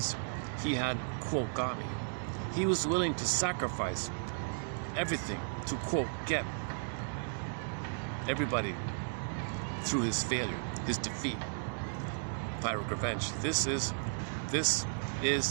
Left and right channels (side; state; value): left; silent; digital silence